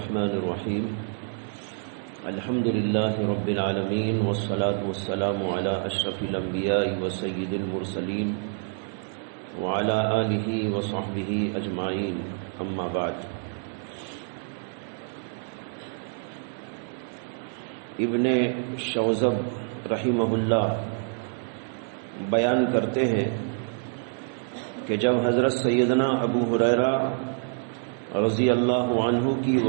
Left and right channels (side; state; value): left; silent; 60 dB below the other